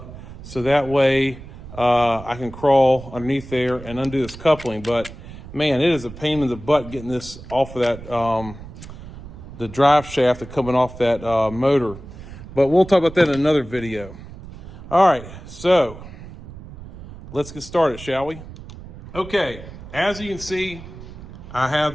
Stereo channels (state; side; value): noise; right; rumble, 14 dB below the sound